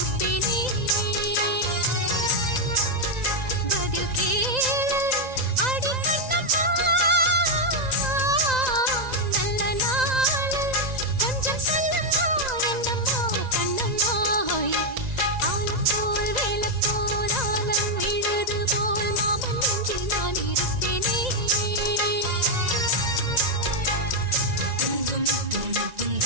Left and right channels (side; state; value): left; late; 1.9 ms